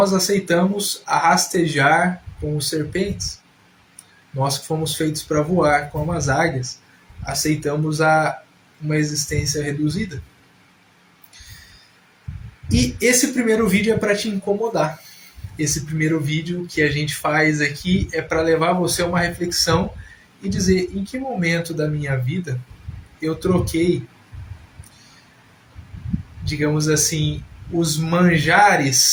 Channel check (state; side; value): identical; both; correlation 1.00